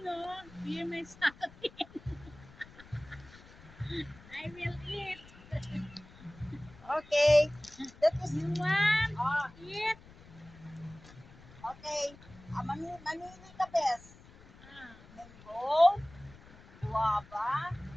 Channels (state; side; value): noise; left; rumble, 22 dB below the sound